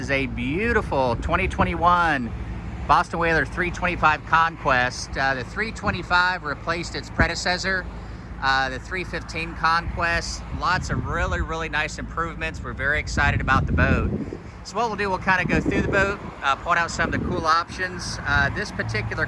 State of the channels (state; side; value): identical; both; correlation 1.00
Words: a beautiful 2021 Boston Whaler 325 Conquest. The 325 replaced its predecessor, the 315 Conquest. Lots of really nice improvements. We're very excited about the boat. So what we'll do, we'll kind of go through the boat, point out some of the cool options. This particular